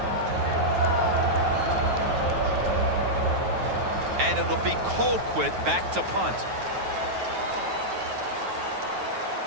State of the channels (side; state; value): left; late; 9.3 ms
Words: And it'll be Colquitt back to punt.